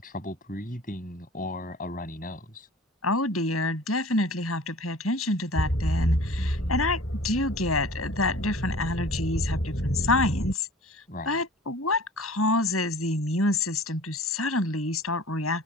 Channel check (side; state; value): both; normal; correlation 0.43